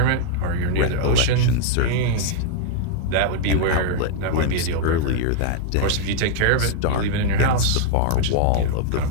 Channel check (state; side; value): different; both; correlation 0.00